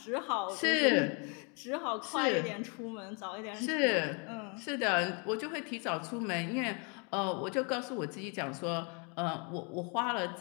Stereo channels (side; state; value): right; quieter; 35.6 dB